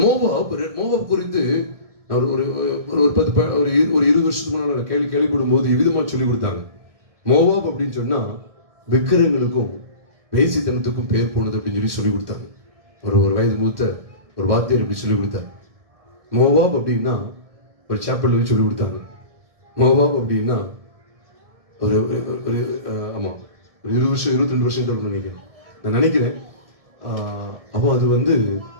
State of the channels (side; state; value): left; late; 1.7 ms